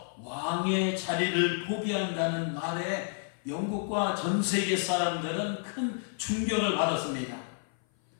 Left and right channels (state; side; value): silent; right; 55 dB below the other